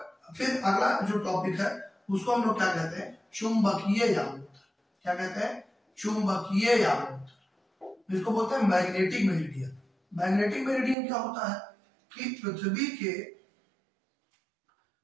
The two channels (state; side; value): drops out; left; at 11.0 s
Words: फिर अगला जो टॉपिक है उसको हम लोग क्या कहते हैं? चुंबकीय यामोत्तर। क्या कहते हैं? चुंबकीय यामोत्तर। इसको बोलते हैं मैग्नेटिक मेरिडियन। मैग्नेटिक मेरिडियन क्या होता है कि पृथ्वी के